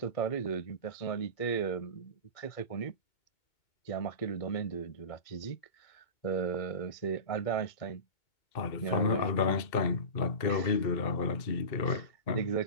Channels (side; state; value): right; late; 2.2 ms